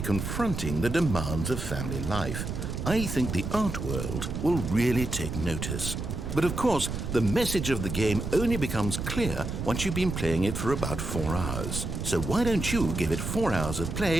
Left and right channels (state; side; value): noise; right; rumble, 4 dB below the sound